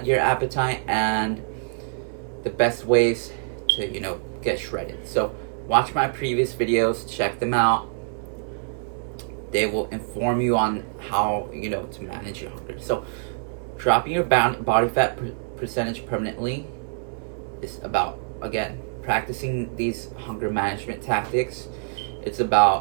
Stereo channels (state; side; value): silent; left; 62 dB below the other